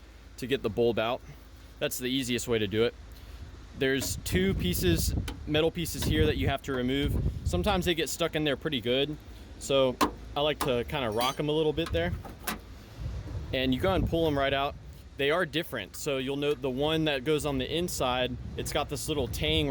to get the bulb out. That's the easiest way to do it. There's two pieces, metal pieces here that you have to remove. Sometimes they get stuck in there pretty good. So I like to kind of rock them a little bit there. And you go and pull them right out. They are different. So you'll note the one that goes on the inside, it's got this little tang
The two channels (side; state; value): both; identical; correlation 1.00